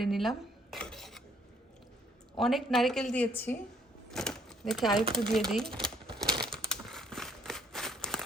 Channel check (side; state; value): both; normal; correlation 0.65